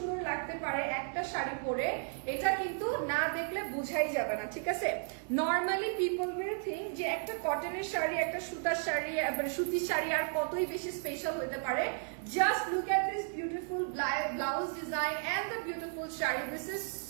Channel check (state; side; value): silent; left; 55 dB below the other